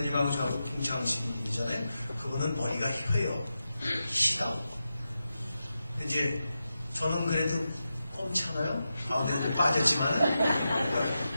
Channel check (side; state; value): both; inverted; correlation -0.90